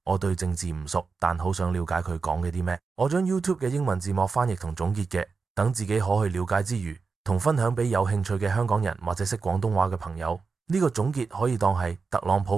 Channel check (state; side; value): quieter; left; 4.7 dB